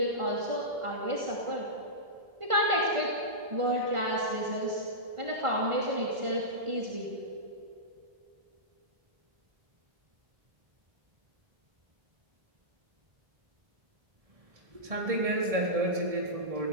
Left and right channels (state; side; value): late; left; 1.4 ms